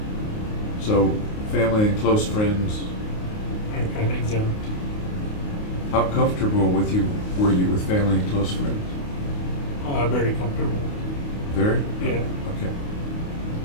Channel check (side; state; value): right; late; 28 ms